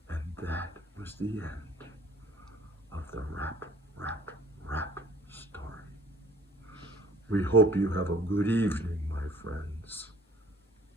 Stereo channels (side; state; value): both; normal; correlation 0.54